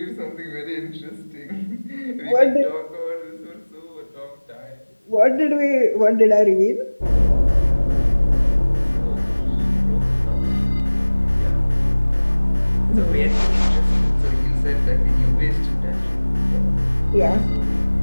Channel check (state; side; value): inverted; both; correlation -1.00